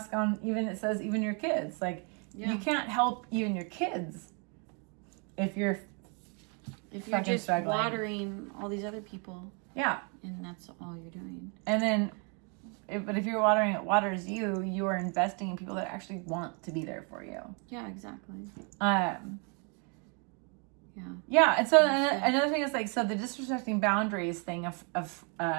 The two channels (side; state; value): left; quieter; 36.4 dB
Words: on, even, it says, even your kids. Like, you can't help even your kids if you're just struggling. watering all these other people. Yeah. And that's all you're doing. And then, but if you're watering it waters you, you are investing in people that actually want to be there for you. Yeah, exactly. Yeah, and so another thing is, like, so the disrespecting boundaries thing of